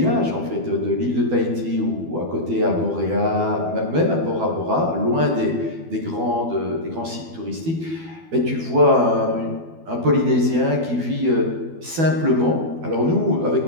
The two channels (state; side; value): late; left; 12 ms